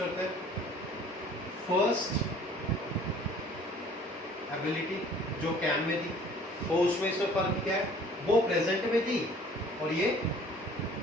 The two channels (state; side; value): normal; both; correlation 0.52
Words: हैं। फर्स्ट एबिलिटी जो कैन में थी, तो उसमें इसमें फर्क क्या है? वो प्रेजेंट में थी और ये